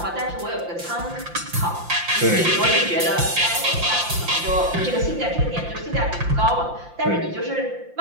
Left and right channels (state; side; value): late; left; 5.8 ms